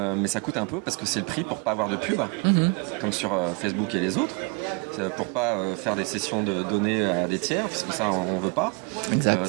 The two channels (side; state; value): left; quieter; 31.2 dB